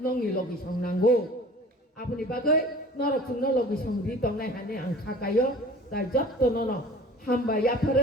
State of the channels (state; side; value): normal; both; correlation 0.44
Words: नंनि लगि संनांगौ आबनि बागै 너로 죽는 로기 성리 동네 하네 안 가까요 나 젖도 너너 한바